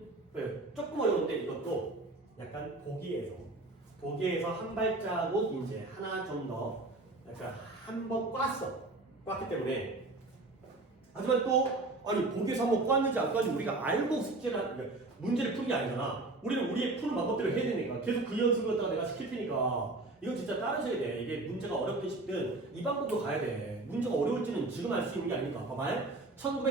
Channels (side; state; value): left; quieter; 3.0 dB